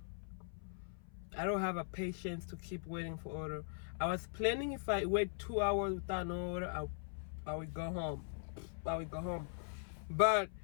I don't have a patience to keep waiting for order. I was planning if I wait 2 hours without no order, I would go home. But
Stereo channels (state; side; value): silent; right; 51 dB below the other